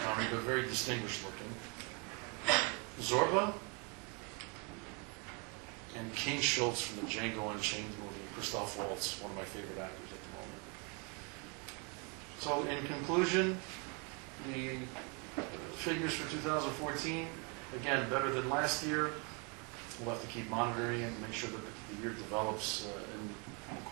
but very distinguished looking. Zorba. And King Schultz from the Django Unchained movie. Christoph Waltz, one of my favorite actors at the moment. So, in conclusion, the figures for 2014, again, better than last year. We'll have to keep monitoring it and make sure that the year develops in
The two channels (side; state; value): left; quieter; 33.6 dB